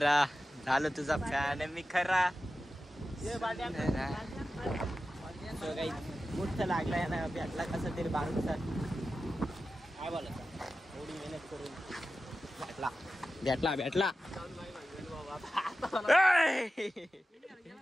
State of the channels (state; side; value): normal; both; correlation 0.93